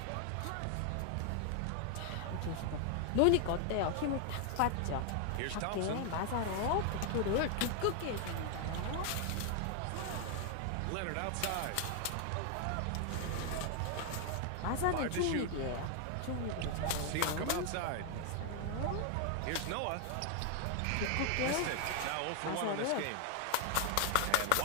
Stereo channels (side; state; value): both; different; correlation 0.00